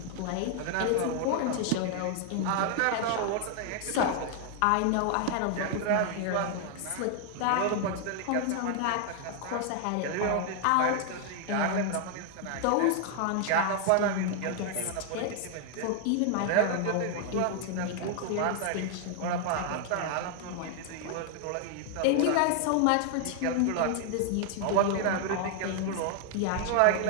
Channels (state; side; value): different; both; correlation 0.00